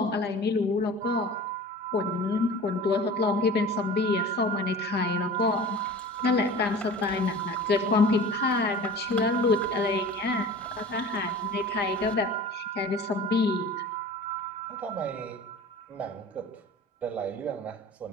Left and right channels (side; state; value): both; normal; correlation 0.39